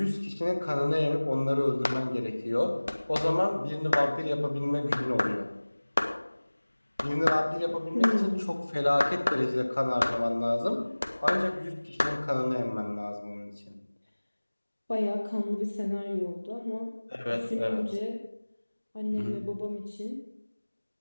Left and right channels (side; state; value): both; inverted; correlation -1.00